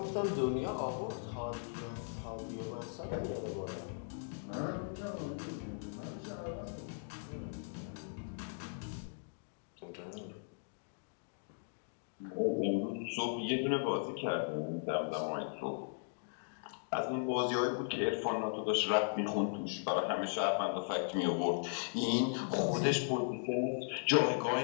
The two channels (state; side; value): silent; right; digital silence